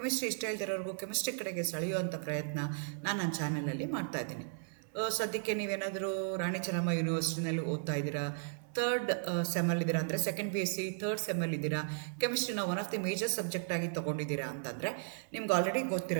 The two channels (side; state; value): left; silent; 54 dB below the other